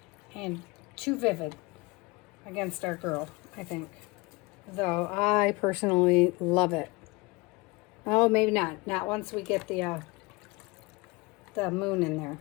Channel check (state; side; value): quieter; right; 24.7 dB